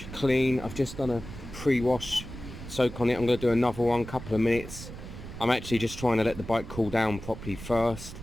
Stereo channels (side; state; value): right; noise; rumble, 11 dB below the sound